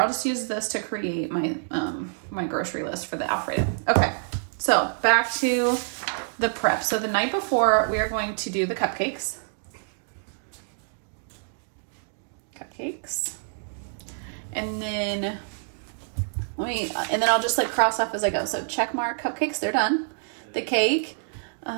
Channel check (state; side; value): silent; left; digital silence